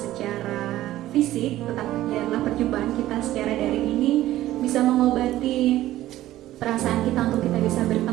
fisik, tetapi biarlah perjumpaan kita secara daring ini bisa mengobati perasaan kita untuk kita bisa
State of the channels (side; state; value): left; quieter; 14.7 dB